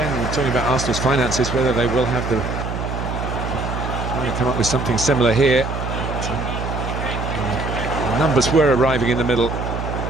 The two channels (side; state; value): right; noise; hum, 4 dB below the sound